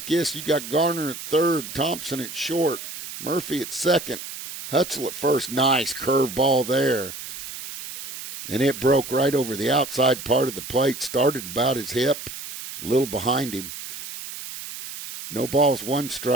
this. You got Garner at third, Thompson at short, Murphy at second, Hutzel at first. Nice curveball there. And it broke right over the outside part of the plate. Started about his hip, a little behind him. No balls, 1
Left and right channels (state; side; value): noise; right; hiss, 10 dB below the sound